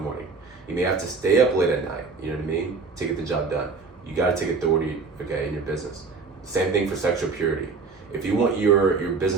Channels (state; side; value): quieter; left; 4.5 dB